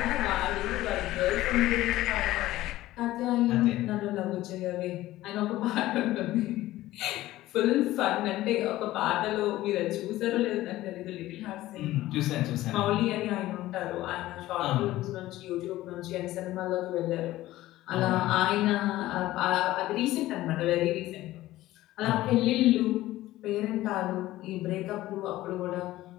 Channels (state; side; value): quieter; right; 16.0 dB